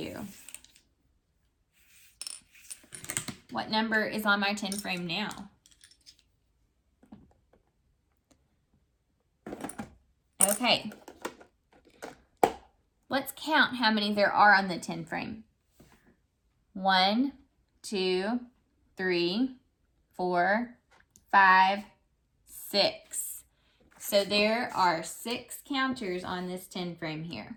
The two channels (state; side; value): identical; both; correlation 1.00